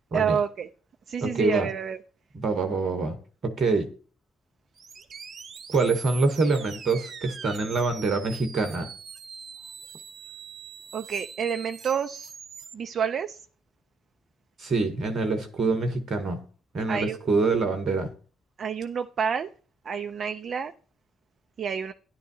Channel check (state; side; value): quieter; left; 4.0 dB